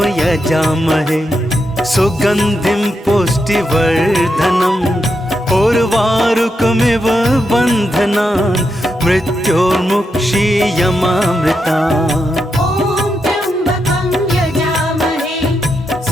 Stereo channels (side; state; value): both; normal; correlation 0.84